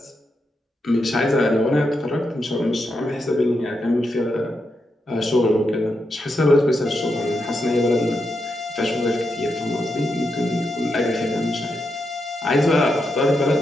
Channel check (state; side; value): normal; both; correlation 0.84